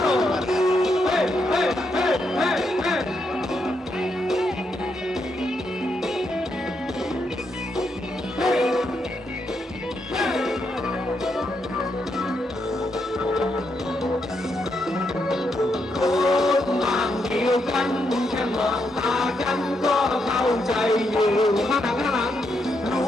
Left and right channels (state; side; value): normal; both; correlation 0.80